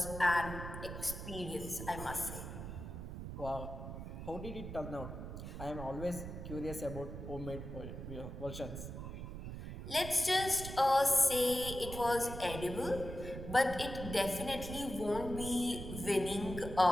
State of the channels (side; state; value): right; noise; rumble, 8 dB below the sound